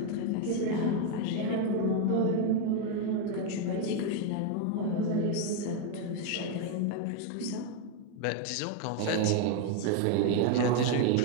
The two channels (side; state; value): both; different; correlation 0.00